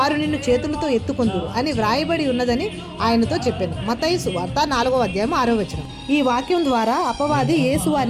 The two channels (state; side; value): identical; both; correlation 1.00